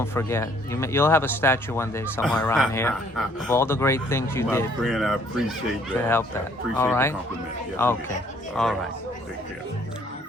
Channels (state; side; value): normal; both; correlation 0.62